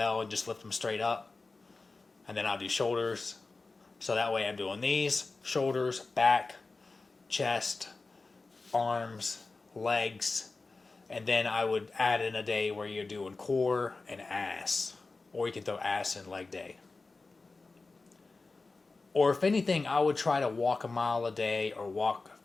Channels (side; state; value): right; quieter; 3.7 dB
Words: and just lift them straight up. And then I'll do shoulders. So that way I'm doing these, shoulders, back, chest, arms, legs. And then I would add in a day where you're doing core and ass. Or you can throw ass in leg day. Or if anything, I would try to walk a mile a day or walk